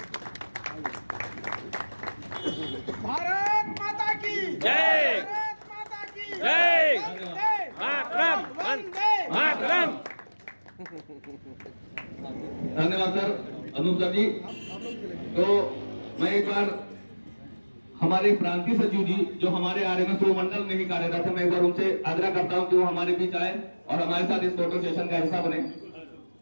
भारत माता की जय। भारत माता की जय। वंदे मातरम। वंदे मातरम। धन्यवाद सर, अनूप सर जी। तो मैं एक बार हमारे प्रांतीय सचिव जी जो हमारे आरएमएस मंडल में ही कार्यरत है, मैं एक बार उनसे आग्रह करता हूं कि वो हमारे बीच आए और हमारे साथ इस फोटो सेशन का हिस्सा बने।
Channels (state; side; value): inverted; both; correlation -1.00